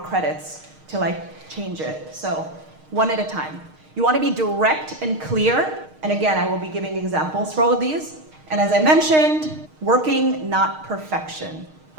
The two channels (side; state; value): left; late; 6.5 ms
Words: to change it. So one at a time. You want to be direct and clear. And again, I will be giving examples for all of these. And as I mentioned, working, not perfection.